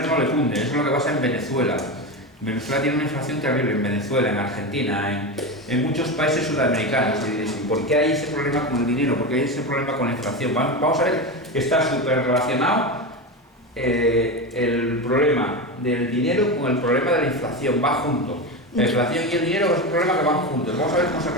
no le cunde. Eso es lo que pasa en Venezuela. Venezuela tiene una inflación terrible, en Venezuela, en Argentina, en muchos países sudamericanos. Y diréis, ¿por qué hay ese problema con el dinero? ¿Por qué hay ese problema con la inflación? Vamos a ver que está súper relacionado el problema del dinero con el problema de la inflación. Va junto. La inflación y el dinero es un problema que van juntos. Vamos a ver cómo se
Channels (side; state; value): both; normal; correlation 0.19